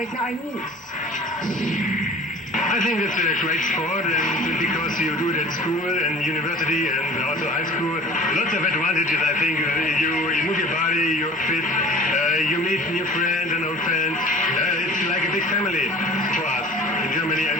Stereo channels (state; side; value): normal; both; correlation 0.45